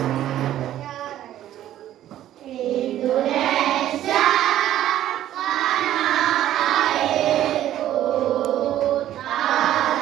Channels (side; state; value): left; quieter; 12.4 dB